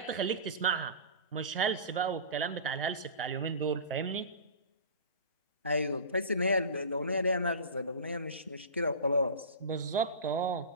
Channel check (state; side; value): inverted; both; correlation -0.34